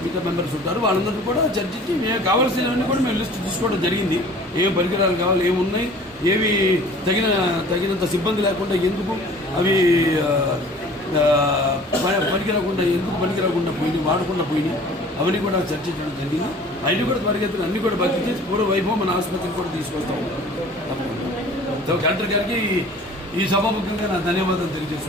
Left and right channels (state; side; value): normal; both; correlation 0.47